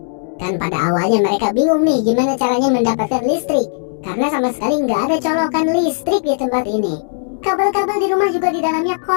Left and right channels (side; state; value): right; silent; digital silence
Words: Kan pada awalnya mereka bingung nih gimana caranya mendapatkan listrik, karena sama sekali nggak ada colokan listrik di tempat ini. Kabel-kabel di rumah juga di dalamnya